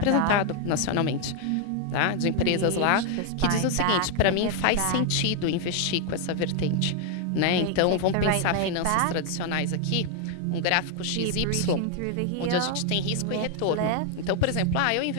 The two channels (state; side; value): different; both; correlation 0.00